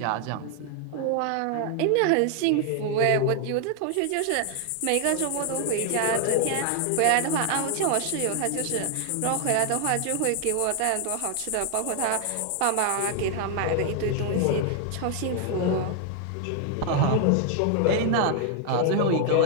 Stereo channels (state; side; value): different; both; correlation 0.00